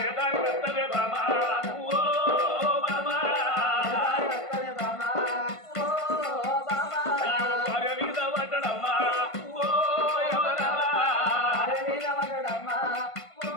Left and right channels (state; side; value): late; right; 1.5 ms